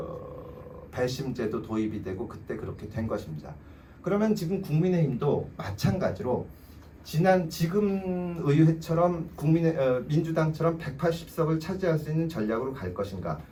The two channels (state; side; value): identical; both; correlation 1.00